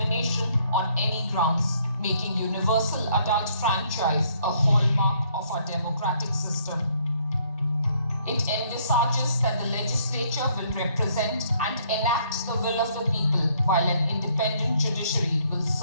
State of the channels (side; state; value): both; inverted; correlation -0.66